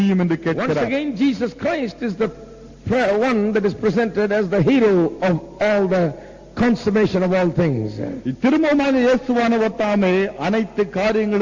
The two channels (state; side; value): identical; both; correlation 1.00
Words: என்று Once கேட்கிறார். again, Jesus Christ is the one that is presented as the hero of all the consummation of all things. திரும்பமாக இயேசுவானவர் தாமே அனைத்து